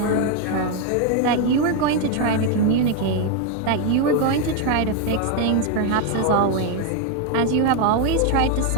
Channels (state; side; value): different; both; correlation 0.01